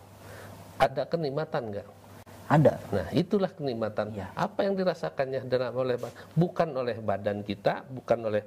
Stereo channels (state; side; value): identical; both; correlation 1.00